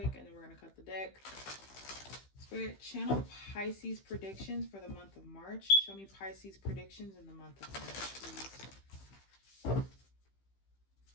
and then we're gonna cut the deck. Spirit, channel Pisces predictions for the month of March. Show me Pisces predictions in the month of March, please.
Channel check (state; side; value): late; right; 15 ms